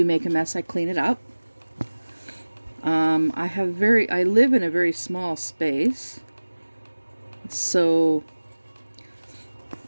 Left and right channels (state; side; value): inverted; both; correlation -1.00